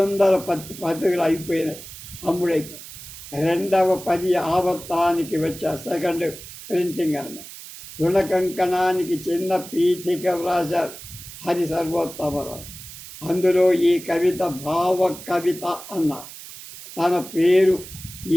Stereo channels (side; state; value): right; noise; hiss, 14 dB below the sound